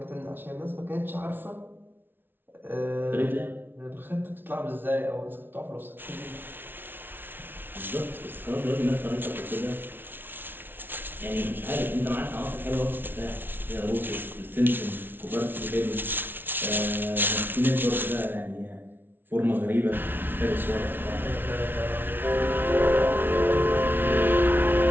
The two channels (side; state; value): left; late; 0.10 ms